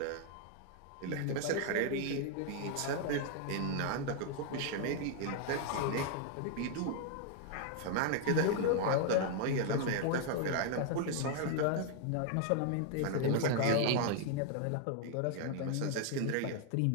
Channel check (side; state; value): both; different; correlation 0.00